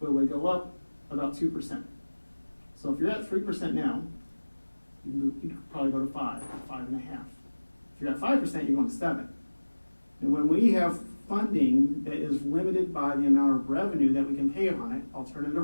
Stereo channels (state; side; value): inverted; both; correlation -1.00